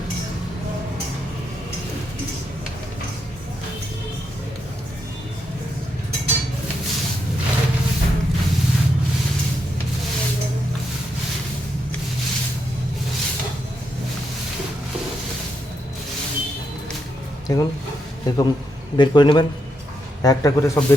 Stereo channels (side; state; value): both; normal; correlation 0.81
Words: দেখুন এরকম বের করে নেবেন, একটা করে সব